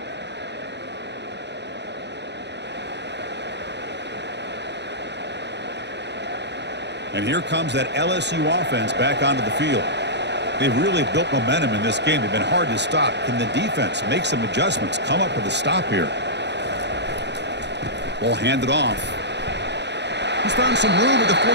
And here comes that LSU offense back onto the field. They've really built momentum in this game. They've been hard to stop. Can the defense make some adjustments, come up with a stop here? Ball handed off. He's found some room at the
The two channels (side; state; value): left; late; 0.50 ms